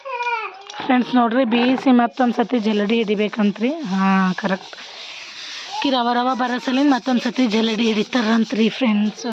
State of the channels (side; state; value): both; identical; correlation 1.00